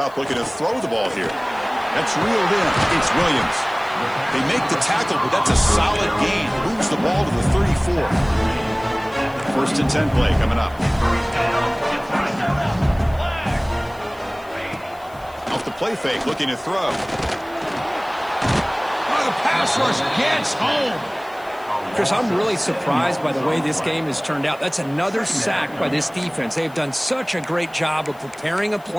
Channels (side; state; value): left; noise; hiss, 26 dB below the sound